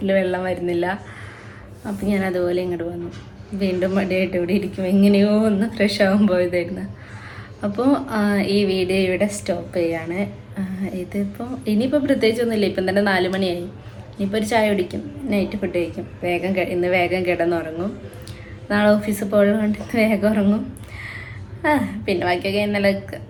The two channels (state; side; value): identical; both; correlation 1.00